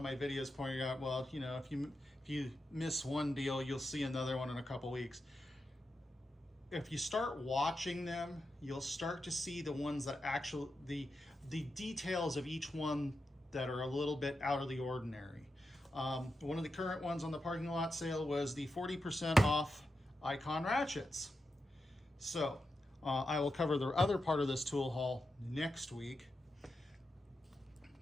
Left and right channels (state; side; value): normal; both; correlation 0.88